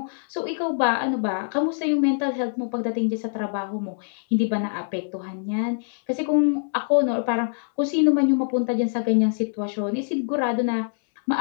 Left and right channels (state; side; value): silent; right; 62 dB below the other